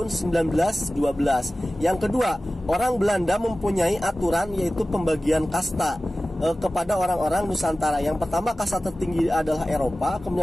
1912. Yang kedua, orang Belanda mempunyai aturan yaitu pembagian kasta kepada orang-orang Nusantara. Yang pertama, kasta tertinggi adalah Eropa,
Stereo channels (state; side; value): normal; both; correlation 0.96